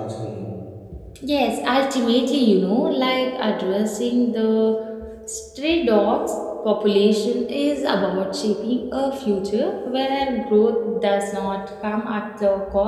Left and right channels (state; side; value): identical; both; correlation 1.00